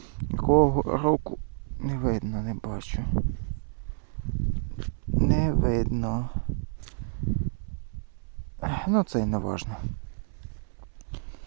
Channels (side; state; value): left; silent; 59 dB below the other